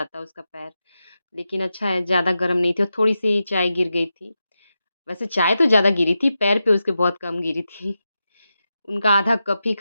उसका पैर। लेकिन अच्छा है ज़्यादा गरम नहीं थी और थोड़ी-सी चाय गिर गई थी। वैसे चाय तो ज़्यादा गिरी थी, पैर पे उसके बहुत कम गिरी थी। उनका आधा कप ही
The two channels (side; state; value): both; inverted; correlation -0.89